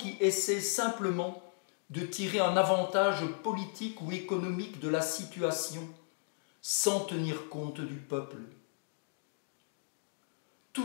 essaient simplement de tirer un avantage politique ou économique de la situation, sans tenir compte du peuple.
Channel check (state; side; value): silent; right; digital silence